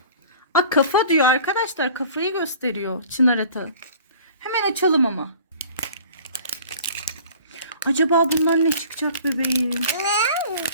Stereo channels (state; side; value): inverted; both; correlation -0.46